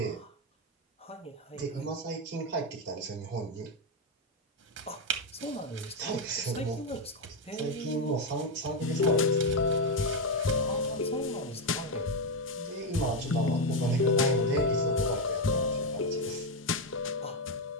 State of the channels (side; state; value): both; normal; correlation 0.06